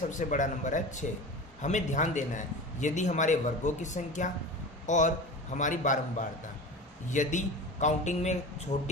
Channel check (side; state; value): both; normal; correlation 0.32